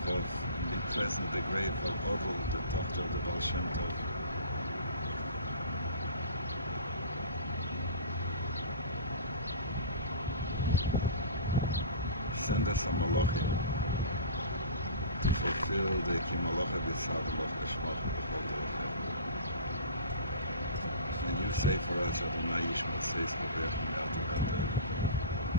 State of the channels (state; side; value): inverted; both; correlation -0.37